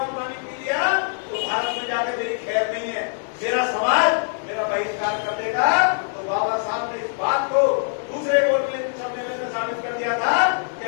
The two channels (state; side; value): silent; right; 63 dB below the other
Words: पानी पी लिया तो भारत में जाकर मेरी खैर नहीं है, मेरा समाज मेरा बहिष्कार कर देगा। तो बाबा साहब ने इस बात को दूसरे गोल्ड मेडल सम्मेलन में साबित कर दिया था कि